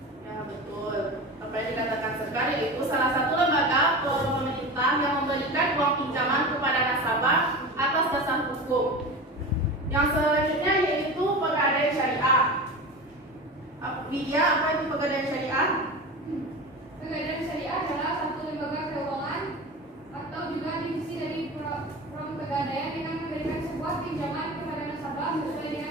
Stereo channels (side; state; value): both; normal; correlation 0.29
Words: Ya, betul. Apa yang dikatakan Sekar itu salah satu lembaga pemerintah yang memberikan uang pinjaman kepada nasabah atas dasar hukum. Yang selanjutnya yaitu pegadaian syariah. Widya, apa itu pegadaian syariah? Pegadaian syariah adalah satu lembaga keuangan atau juga divisi dari program pegadaian dengan memberikan sebuah pinjaman kepada nasabah sesuai